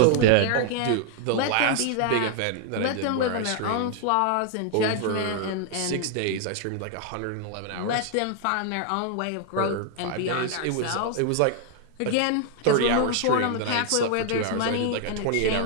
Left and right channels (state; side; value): different; both; correlation 0.00